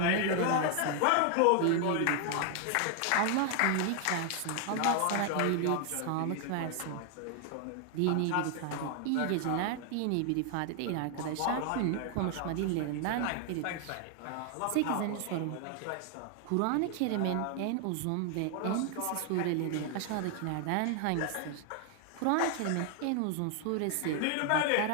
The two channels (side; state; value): both; different; correlation 0.00